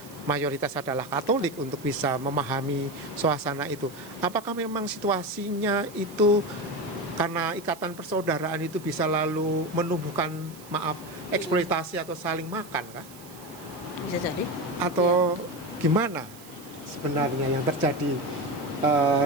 mayoritas adalah Katolik, untuk bisa memahami suasana itu. Apakah memang situasinya itu karena ikatan persaudaraan itu bisa lalu menumbuhkan eksploitasi atau saling makan kah? Bisa jadi. Atau gimana sebenarnya yang terjadi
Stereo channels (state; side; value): noise; right; hiss, 20 dB below the sound